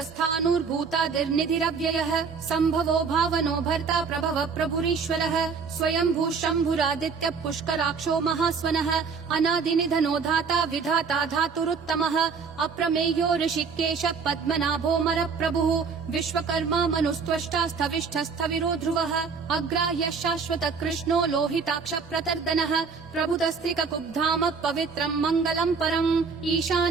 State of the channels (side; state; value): left; quieter; 5.4 dB